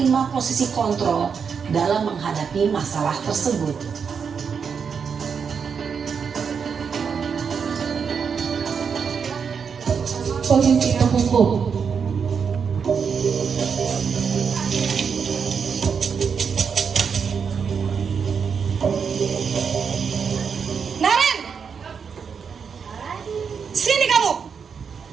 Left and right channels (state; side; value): quieter; left; 6.4 dB